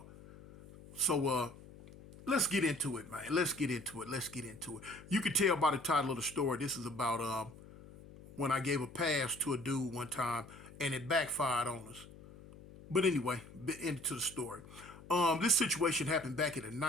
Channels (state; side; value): noise; left; hum, 19 dB below the sound